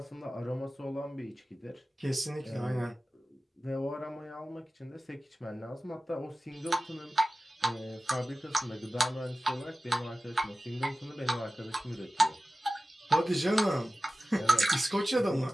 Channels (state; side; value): normal; both; correlation 0.96